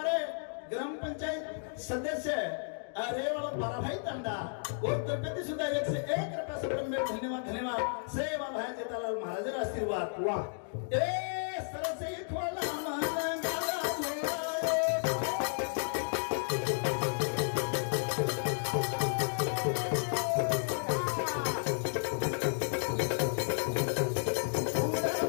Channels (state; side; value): silent; right; digital silence